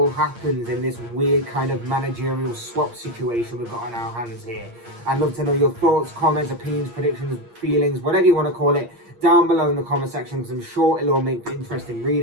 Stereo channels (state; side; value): late; left; 8.6 ms